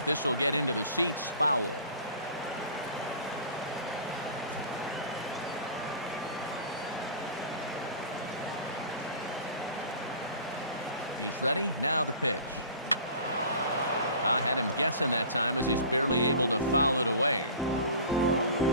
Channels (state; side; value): inverted; both; correlation -0.42